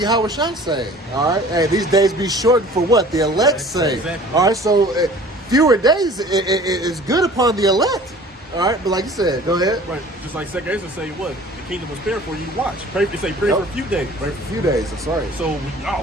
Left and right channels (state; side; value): normal; both; correlation 0.47